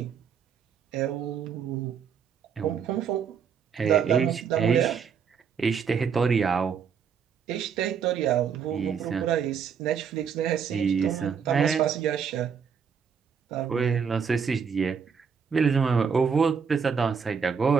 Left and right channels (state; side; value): quieter; left; 6.7 dB